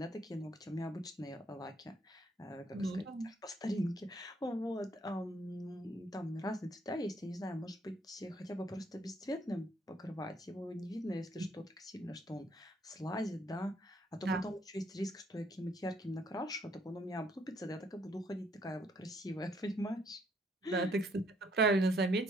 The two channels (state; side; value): normal; both; correlation 0.67